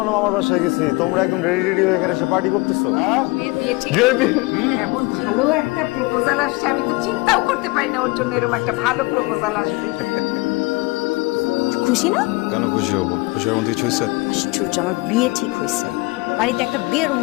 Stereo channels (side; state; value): right; quieter; 24.4 dB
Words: না আমার বাসায় গেছি, তোমরা একদম রেডি হয়ে এখানে এসে পার্টি করতেছো। এমন ভালো একটা প্রপোজাল আসছে, আমি তো চিন্তাও করতে পারি না ওর জন্য এরকম একটা ভালো প্রপোজাল আসবে। খুশি না? কেন খুশি হবো? খুশি হওয়ার মতো কিছু হয়েছে? আশ্চর্য, আমার বিয়ে ঠিক হয়েছে। বাড়িতে একটা বিয়ের